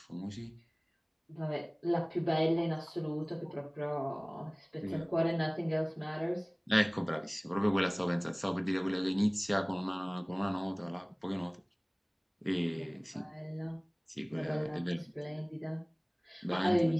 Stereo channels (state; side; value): identical; both; correlation 1.00